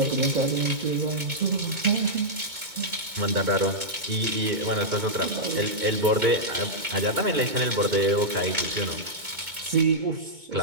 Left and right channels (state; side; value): late; left; 2.2 ms